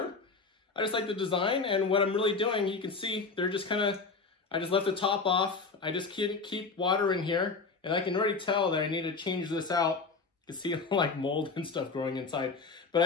I just like the design, and what I'm really doing, you can see, they're just kind of, I just left the top off. I just keep water in here, and I can already tell that I need to change this out. You can see like mold and stuff growing inside, but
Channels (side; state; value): right; quieter; 4.4 dB